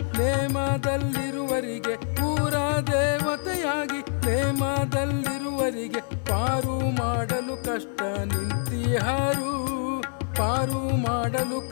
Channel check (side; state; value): right; silent; 61 dB below the other